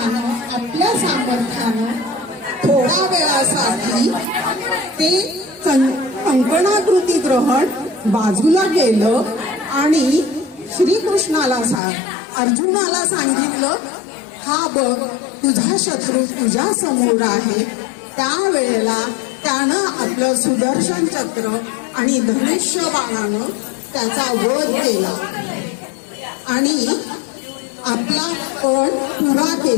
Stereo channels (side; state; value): right; drops out; at 11.8 s